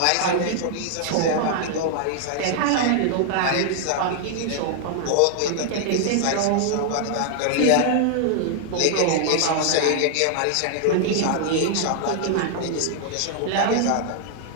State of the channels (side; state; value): both; different; correlation 0.00